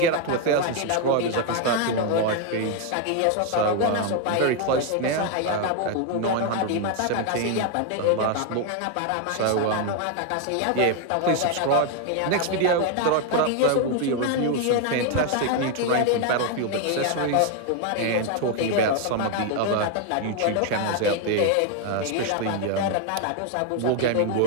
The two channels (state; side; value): different; both; correlation 0.01